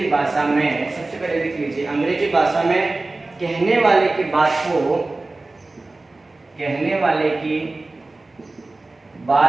भाषा में सबसे पहले लिख लीजिए अंग्रेजी भाषा में कहने वाले की बात को, कहने वाले की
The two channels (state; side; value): quieter; left; 3.2 dB